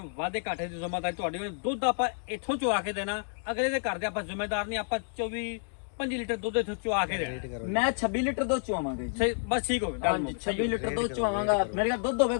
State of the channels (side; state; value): right; silent; digital silence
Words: ਵਾਧੇ ਘਾਟੇ ਦੀ ਜ਼ਿੰਮੇਵਾਰੀ ਤੁਹਾਡੀ ਹੋਣੀ ਦੁੱਧ ਆਪਾਂ ਇੱਥੋਂ ਚੁਆ ਕੇ ਦੇਣਾ ਅਗਲੇ ਦੇ ਘਰ ਦੇ ਆਪਾਂ ਜ਼ਿੰਮੇਦਾਰ ਨਹੀਂ ਆਪਾਂ 24-25 ਲੀਟਰ ਦੁੱਧ ਇੱਥੋਂ ਚੁਆ ਕੇ ਦੇਣਾ ਮੈਂ 26 ਲੀਟਰ ਦੁੱਧ ਚੁਆਵਾਂਗਾ ਜੀ ਸਹੀ ਬਸ ਠੀਕ ਹੋ ਗਿਆ ਗੱਲ ਹਾਂਜੀ ਮੁੱਕ 26 ਲੀਟਰ ਦੁੱਧ ਚੁਆਵਾਂਗਾ ਮੇਰੇ ਕੋਲ ਦੁੱਧ